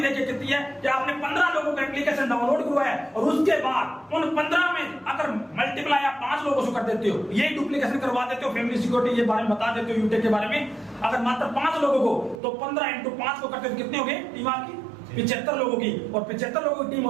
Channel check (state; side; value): drops out; left; at 12.4 s